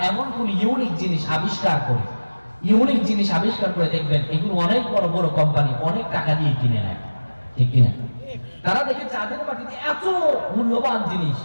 এমন কোন ইউনিক জিনিস আবিষ্কার করে দেখবেন এগুলো অনেক বড় বড় কোম্পানি অনেক টাকা দিয়ে কিনে নেয়, ঠিক কিনা? তারা দেখে চাঁদের মাটিতে এত মূল্যবান জিনিস,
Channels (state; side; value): inverted; both; correlation -1.00